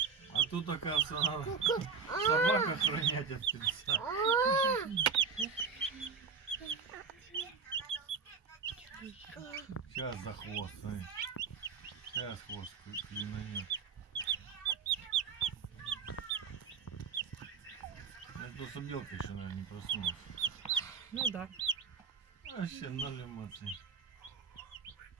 тут оказывается, надо собак охранять от птенца. Сейчас за хвост, смотри. Сейчас хвост клинанет. Это просто белка еще, наверное, не проснулась. Ну да. Вообще ноль эмоций.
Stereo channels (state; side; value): quieter; left; 5.5 dB